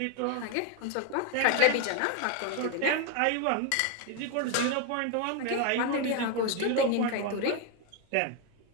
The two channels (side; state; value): both; different; correlation 0.01